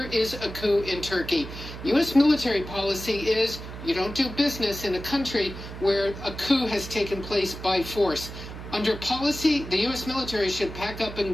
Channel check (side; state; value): right; noise; hum, 11 dB below the sound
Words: is a coup in Turkey, U.S. military policy is you don't do business in a country where a coup has taken place by force. Under policy, the U.S. military should pack up